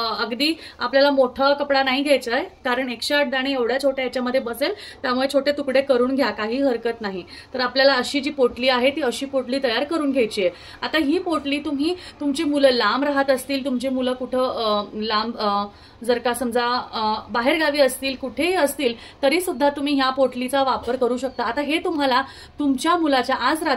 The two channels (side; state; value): both; identical; correlation 1.00